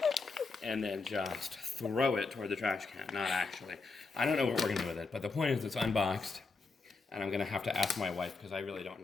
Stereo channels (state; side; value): quieter; right; 4.2 dB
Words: and then just throw it toward the trash can. Not actually. I don't know what we're gonna do with it, but the point is it's unboxed, and I'm gonna have to ask my wife because I really don't